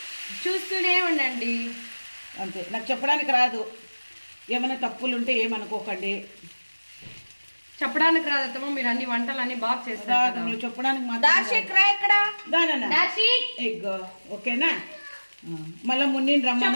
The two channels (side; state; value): both; inverted; correlation -1.00